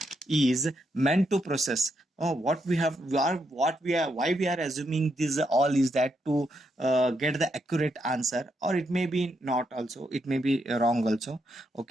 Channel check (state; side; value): normal; both; correlation 0.79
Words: is meant to process what we have, why we are assuming this all is that to get the accurate answer, or it may be not also, it may be wrong also.